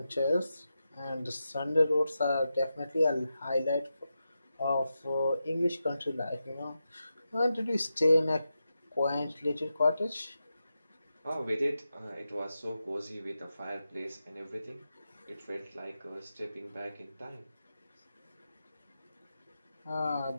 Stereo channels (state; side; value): inverted; both; correlation -0.89